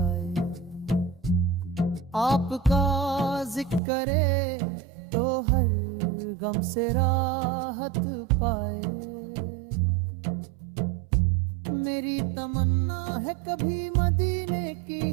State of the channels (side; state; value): left; drops out; at 3.8 s